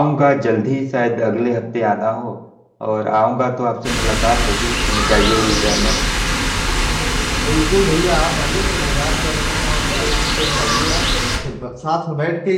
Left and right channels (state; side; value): identical; both; correlation 1.00